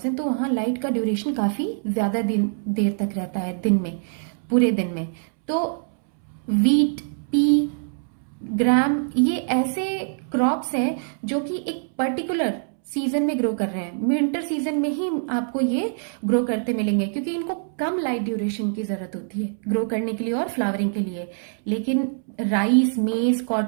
हैं तो वहाँ लाइट का ड्यूरेशन काफ़ी ज़्यादा देर तक रहता है, दिन में, पूरे दिन में। तो वीट, पी, ग्राम, ये ऐसे क्रॉप्स हैं जो कि एक पर्टिकुलर सीजन में ग्रो कर रहे हैं, विंटर सीजन में ही आपको ये ग्रो करते मिलेंगे, क्योंकि इनको कम लाइट ड्यूरेशन की ज़रूरत होती है ग्रो करने के लिए और फ्लावरिंग के लिए। लेकिन राइस, मेज,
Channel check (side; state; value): left; silent; 63 dB below the other